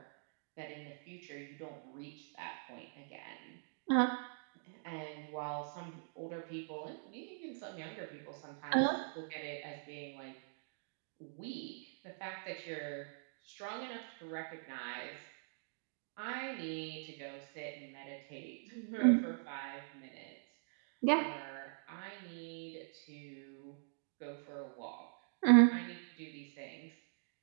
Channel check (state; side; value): silent; left; digital silence